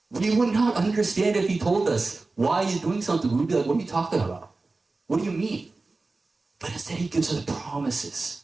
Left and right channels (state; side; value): quieter; left; 3.5 dB